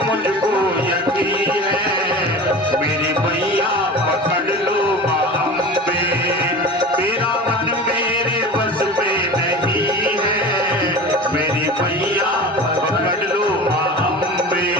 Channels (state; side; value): normal; both; correlation 0.34